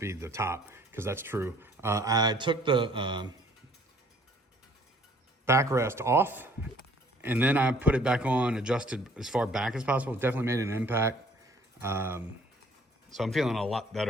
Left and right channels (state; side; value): normal; both; correlation 0.58